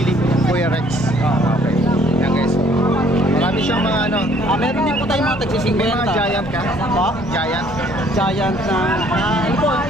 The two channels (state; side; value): normal; both; correlation 0.61